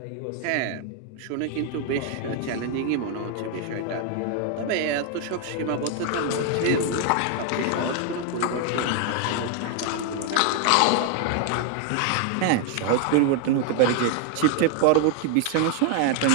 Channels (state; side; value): different; both; correlation 0.00